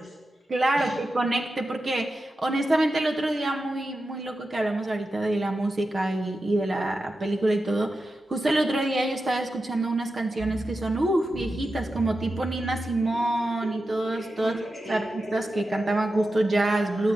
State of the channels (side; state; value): both; normal; correlation 0.91